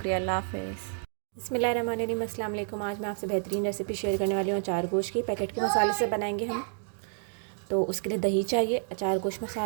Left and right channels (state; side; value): silent; left; digital silence